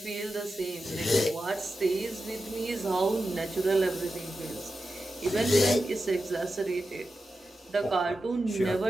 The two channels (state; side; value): normal; both; correlation 0.91